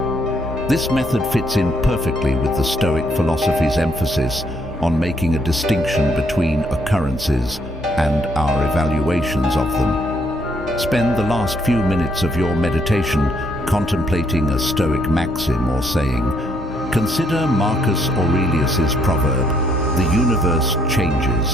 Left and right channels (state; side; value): normal; both; correlation 0.70